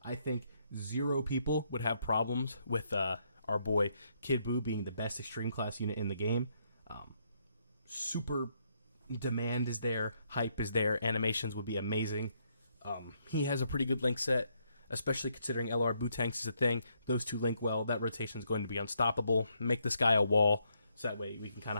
I think 0 people would have problems with our boy Kidboo being the best extreme class unit in the game. Super demand is there, hype is there, animations would be amazing. He has a pretty good link set, especially considering LR Bootanks is a thing. Those two link well. That rotation is going to be unstoppable. Make this guy a wall, so that way we can kind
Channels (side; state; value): both; inverted; correlation -0.75